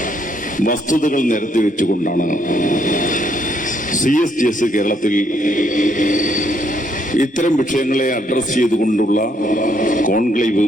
വസ്തുതകൾ നിരത്തി വെച്ചുകൊണ്ടാണ് CSGS കേരളത്തിൽ ഇത്തരം വിഷയങ്ങളെ അഡ്രസ് ചെയ്തുകൊണ്ടുള്ള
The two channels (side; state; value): both; normal; correlation 0.71